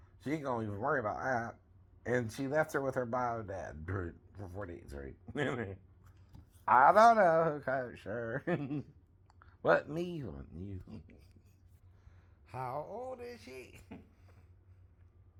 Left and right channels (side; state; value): both; identical; correlation 1.00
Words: She ain't gonna even worry about that. And she left her with her bio dad for 4 days, right? I don't know who coached her. What me? What you? How old is she?